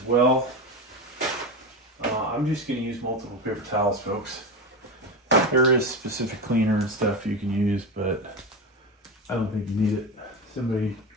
well. I'm just going to use multiple paper towels, folks. There is specific cleaner and stuff you can use, but I don't think you need it. Somebody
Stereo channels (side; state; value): both; normal; correlation 0.19